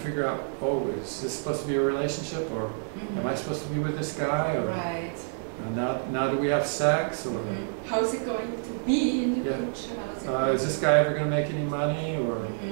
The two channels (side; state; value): left; silent; digital silence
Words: out, is this supposed to be a relationship, or am I supposed to be with this guy, or now do we have sex, or how's it going to be in the future? Is this guy ever going to make any money, or